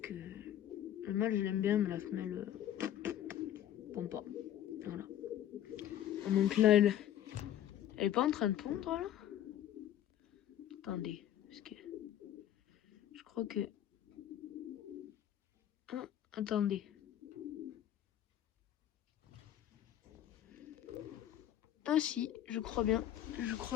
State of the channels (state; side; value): quieter; right; 11.5 dB